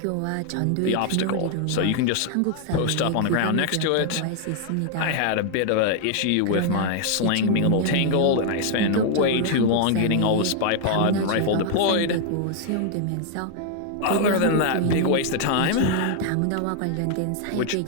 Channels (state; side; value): different; both; correlation 0.00